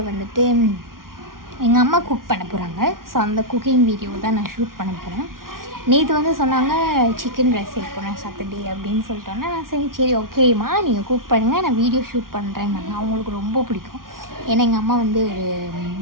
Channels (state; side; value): late; left; 0.92 ms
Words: எங்கள் அம்மா குக் பண்ண போகிறாங்க. ஸோ அந்த குக்கிங் வீடியோ தான் நான் ஷூட் பண்ண போகிறேன். நேற்று சொன்னாங்க சிக்கன் ரைஸ் செய்ய போகிறேன் சாட்டர்டே அப்படின்னு சொல்லிட்டோன்னே நான் சரி ஓகேம்மா நீங்கள் குக் பண்ணுங்கள், நான் வீடியோ ஷூட் பண்ணுறேன்னாங்க. அவங்களுக்கு ரொம்ப பிடிக்கும். ஏன்னா எங்கள் அம்மா ஒரு